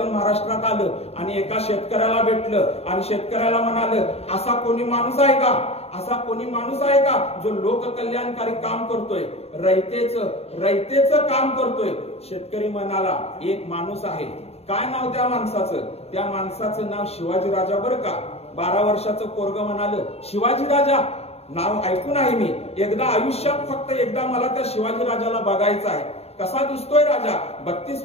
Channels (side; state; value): right; late; 0.30 ms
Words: महाराष्ट्रात आलं आणि एका शेतकऱ्याला भेटलं आणि शेतकऱ्याला म्हणालं, असा कोणी माणूस आहे का, असा कोणी माणूस आहे का जो लोककल्याणकारी काम करतोय, रयतेचं काम करतोय. शेतकरी म्हणाला, एक माणूस आहे. काय नाव त्या माणसाचं? त्या माणसाचं नाव शिवाजी राजा. बरं का, 12 वर्षाचं पोरगं म्हणालं, शिवाजी राजा नाव ऐकून आहे मी, एकदा आयुष्यात फक्त एकदा मला त्या शिवाजी राजाला बघायचं आहे. कसा दिसतोय राजा? 32